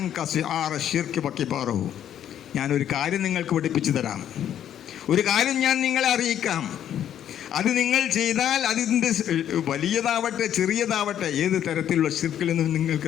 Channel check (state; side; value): quieter; right; 10.3 dB